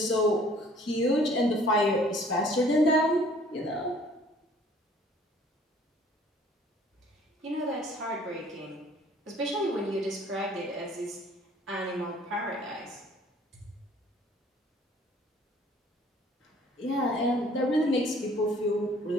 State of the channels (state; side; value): normal; both; correlation 0.56